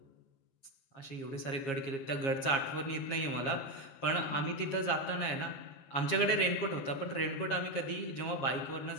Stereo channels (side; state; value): right; late; 7.3 ms